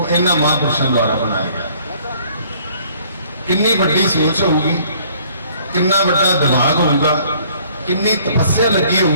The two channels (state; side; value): inverted; both; correlation -0.59